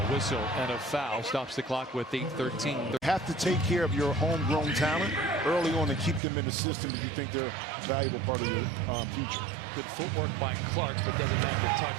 whistle and a foul stops the clock with 8:13. Have to take care of your homegrown talent early on and keep them in the system if you think they're a valuable part of your future. Good footwork by Clark, but doesn't have the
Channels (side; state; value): left; drops out; at 6.2 s